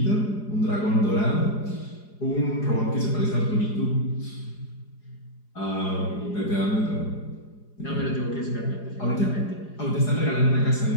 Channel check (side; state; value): right; late; 4.9 ms